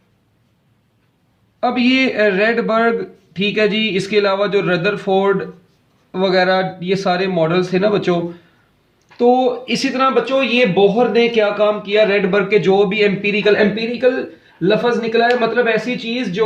अब ये रेडबर्ग, ठीक है जी, इसके अलावा जो रदरफोर्ड वगैरह ये सारे मॉडल्स थे ना बच्चों, तो इसी तरह बच्चों ये बोहर ने क्या काम किया, रेडबर्ग के जो भी एम्पिरिकल लफ्ज निकला है, मतलब ऐसी चीज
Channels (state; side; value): identical; both; correlation 1.00